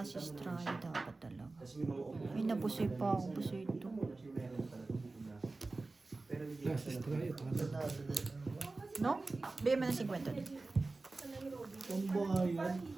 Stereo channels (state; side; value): quieter; left; 3.4 dB